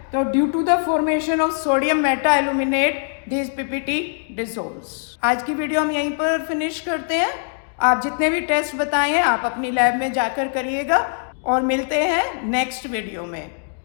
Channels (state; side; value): silent; right; digital silence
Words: तो due to the formation of sodium meta aluminate this PPT dissolves. आज की video हम यहीं पर फिनिश करते हैं. आप जितने भी टेस्ट बताए हैं आप अपनी लैब में जाकर करिएगा और मिलते हैं नेक्स्ट वीडियो में.